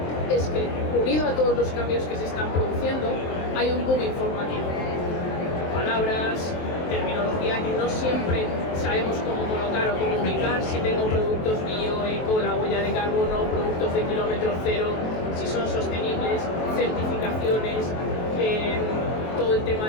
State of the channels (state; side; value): late; right; 23 ms